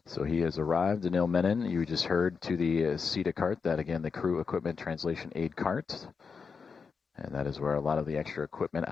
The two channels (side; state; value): right; quieter; 5.5 dB